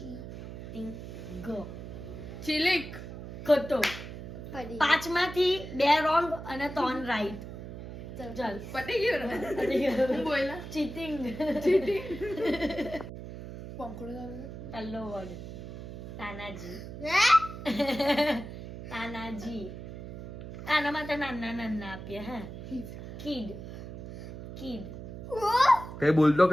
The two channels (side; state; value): right; noise; hum, 10 dB below the sound